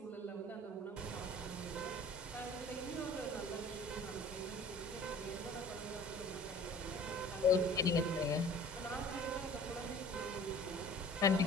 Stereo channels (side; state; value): both; normal; correlation 0.46